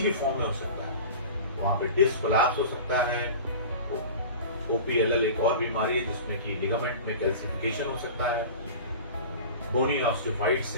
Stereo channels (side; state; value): both; inverted; correlation -0.36